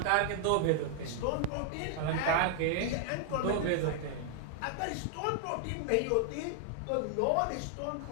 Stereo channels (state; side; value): different; both; correlation 0.00